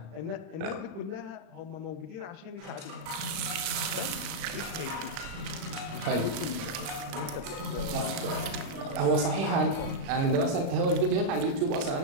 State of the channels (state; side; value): late; left; 36 ms